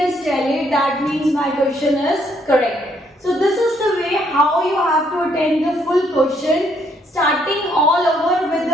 tallied. That means my question is correct. So this is the way how you have to attend the full question, starting all over with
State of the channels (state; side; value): normal; both; correlation 0.70